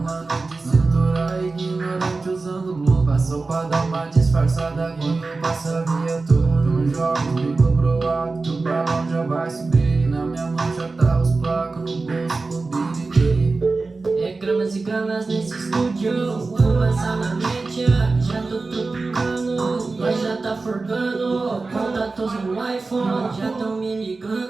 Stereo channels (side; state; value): left; quieter; 3.8 dB